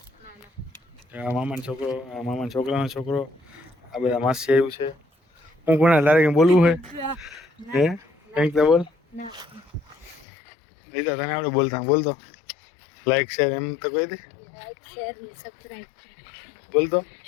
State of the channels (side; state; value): right; drops out; at 10.2 s